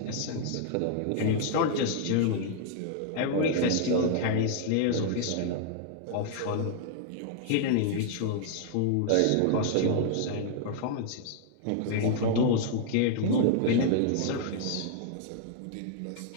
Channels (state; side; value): different; both; correlation 0.00